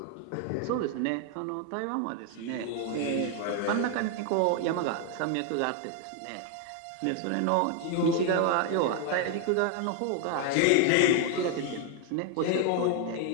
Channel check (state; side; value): different; both; correlation 0.01